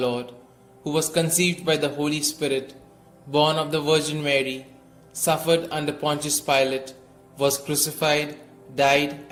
who was conceived by the Holy Spirit, born of the Virgin Mary, suffered under Pontius Pilate, was crucified, died,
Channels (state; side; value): identical; both; correlation 1.00